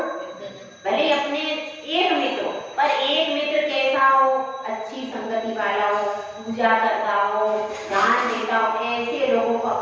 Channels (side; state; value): both; identical; correlation 1.00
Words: भले अपने एक मित्र, पर एक मित्र कैसा हो, अच्छी संगति वाला हो, पूजा करता हो, दान देता हो, ऐसे लोगों को